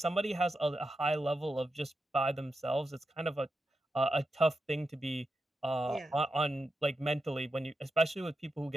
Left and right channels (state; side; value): normal; both; correlation 0.88